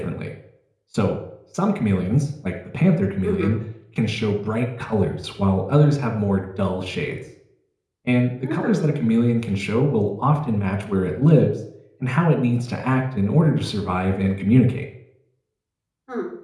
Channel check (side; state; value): both; identical; correlation 1.00